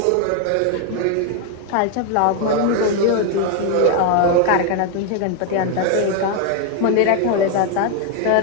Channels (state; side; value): different; both; correlation 0.00